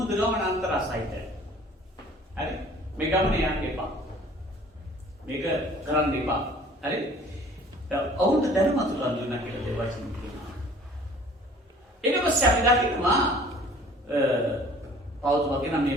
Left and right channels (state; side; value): normal; both; correlation 0.51